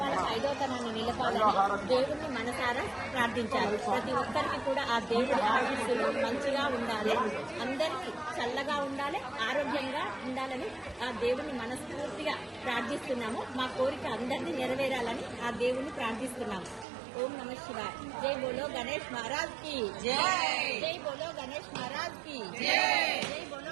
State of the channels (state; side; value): drops out; left; at 16.9 s